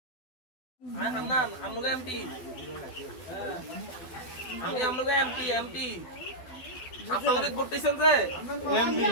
হান্নান আমনুকে এমপি আমনুকে এমপি আপনারা করতেছেন যে এমপি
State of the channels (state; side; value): late; right; 12 ms